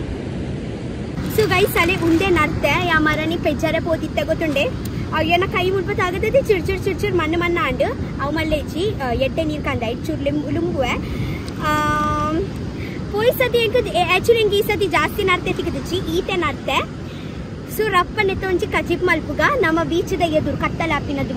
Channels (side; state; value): both; identical; correlation 1.00